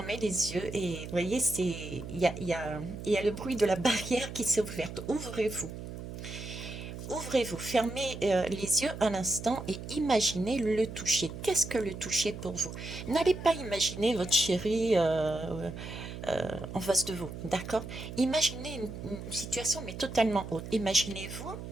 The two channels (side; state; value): right; noise; hum, 9 dB below the sound